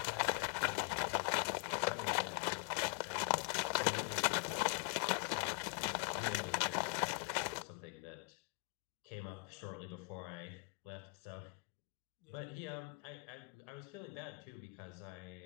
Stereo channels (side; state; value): right; quieter; 35.3 dB